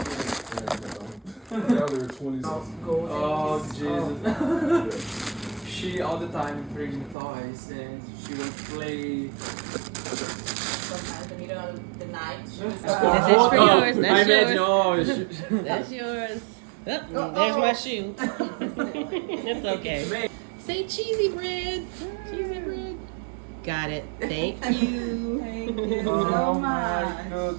Oh Jesus! She all the time bring toys and she will play. Sometimes in the middle of the night. This is for yours. I That's imagine. yours. Oh, That's yours. Oh, there's my shoe. It's okay. Say cheesy bread. Cheesy bread. Got it. Thank you. Thank you oh so my much.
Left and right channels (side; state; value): left; drops out; at 7.2 s